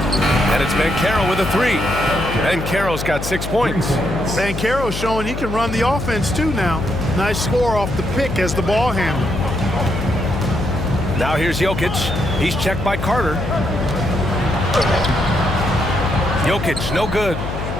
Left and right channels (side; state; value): left; noise; hum, 6 dB below the sound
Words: And it's Banchero with a 3. Banchero's got 6 points. Banchero's showing he can run the offense too now. Nice score off the pick as the ball handler. Now here's Jokic. He's checked by Carter. Jokic, no good.